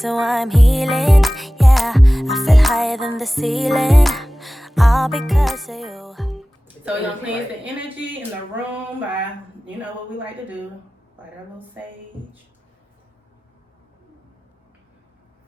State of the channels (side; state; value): both; normal; correlation 0.97